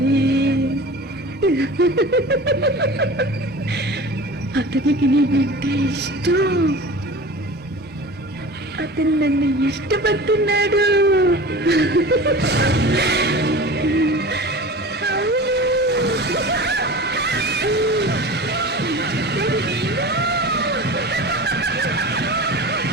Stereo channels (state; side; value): normal; both; correlation 0.36